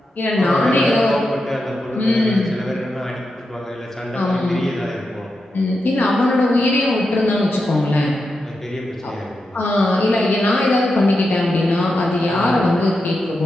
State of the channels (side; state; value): both; normal; correlation 0.88